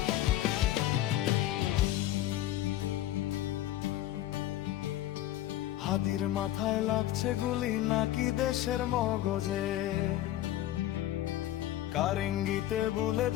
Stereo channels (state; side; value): quieter; right; 13.8 dB